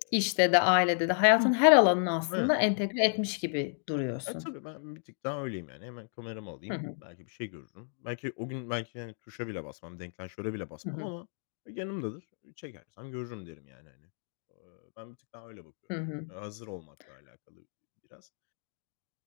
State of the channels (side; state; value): right; silent; digital silence